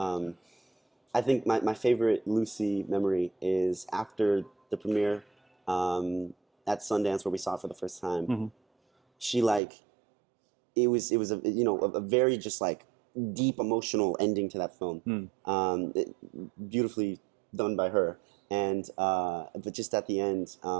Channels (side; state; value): left; drops out; at 9.6 s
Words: think my favorite Lucy memory is after the premiere at Sundance where we saw it for the first time. She like it was a a very just like deep emotional ending to that film, beautifully done by her. And but just at the end,